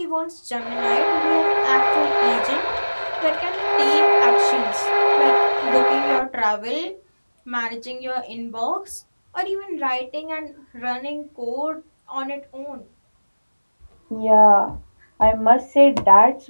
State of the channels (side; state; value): both; inverted; correlation -1.00